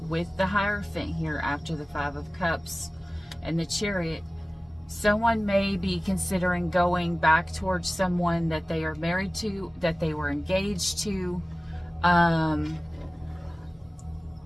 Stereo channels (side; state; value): both; normal; correlation 0.97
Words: with the Hierophant here after the 5 of Cups and the Chariot, someone may be considering going back towards someone that they are married to, that they were engaged to,